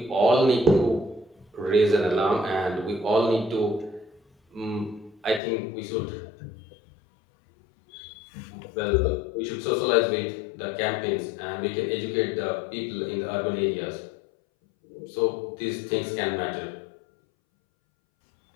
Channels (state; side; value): drops out; right; at 5.4 s